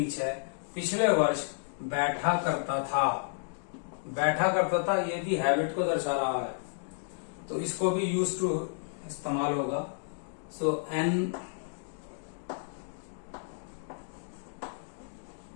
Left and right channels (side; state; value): right; silent; digital silence